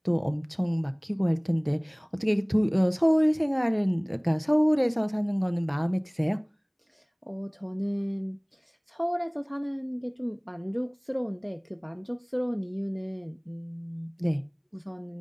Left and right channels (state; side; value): identical; both; correlation 1.00